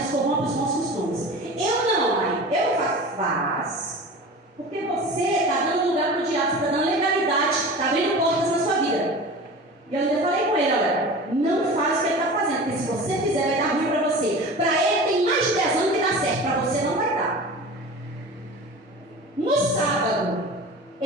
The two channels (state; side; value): normal; both; correlation 0.35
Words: corrompem os bons costumes. Eu não, mãe. Eu faço. Porque você está dando lugar para o diabo, você está dando legalidade, está abrindo portas na sua vida. E eu ainda falei com ele: olha, não faz o que ele está fazendo, porque se você fizer vai dar ruim para você. Para ele tem mais de 10 anos que dá certo, para você não vai dar. No sábado,